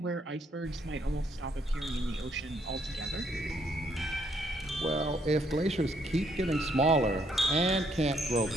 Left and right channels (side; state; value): both; normal; correlation 0.70